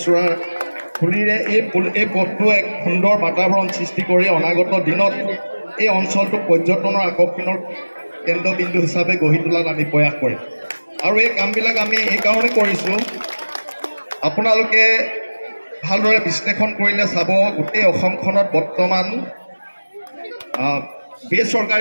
ফুলিৰে এই পথটো এক সুন্দৰ বাতাবৰণ সৃষ্টি কৰি অনাগত দিনত এই অঞ্চলটো পৰ্যটনৰ আকৰ্ষণৰ কেন্দ্ৰবিন্দু হিচাপে গঢ়ি তোলাত আমি প্ৰয়াস কৰিম। আৰু এই কামবিলাক আমি এইকাৰণে কৰিছোঁ, আপোনালোকে ভালদৰে বিশ্লেষণ কৰিলে চাব গোটেই অসমখনত বৰ্তমান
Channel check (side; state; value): both; inverted; correlation -1.00